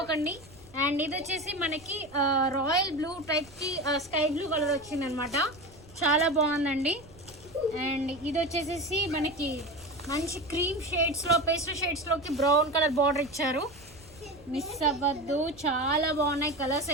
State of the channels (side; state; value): right; noise; rumble, 23 dB below the sound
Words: అండ్ ఇది వచ్చేసి మనకి రాయల్ బ్లూ టైప్కి స్కై బ్లూ కలర్ వచ్చింది అనమాట. చాలా బాగుందండి. అండ్ ఇది వచ్చేసి మనకి మంచి క్రీమ్ షేడ్స్లో, పేస్టల్ షేడ్స్లోకి బ్రౌన్ కలర్ బార్డర్ ఇచ్చారు. మిస్ అవ్వద్దు, చాలా బాగున్నాయి కలర్స్